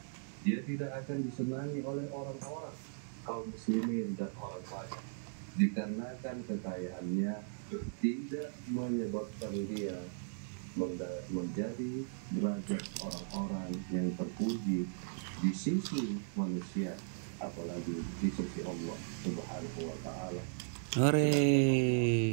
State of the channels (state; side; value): silent; left; digital silence